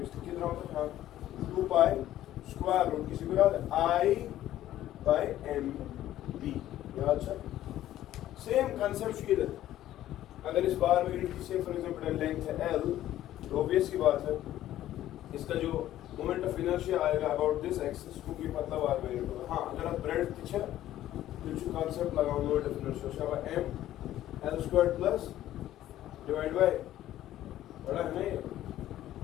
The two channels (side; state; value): right; quieter; 13.2 dB